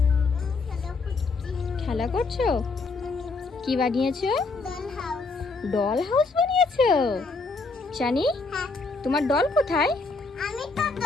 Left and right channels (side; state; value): right; quieter; 4.0 dB